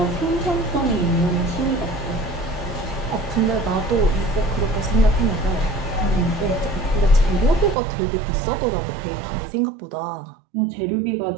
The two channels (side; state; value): left; drops out; at 7.8 s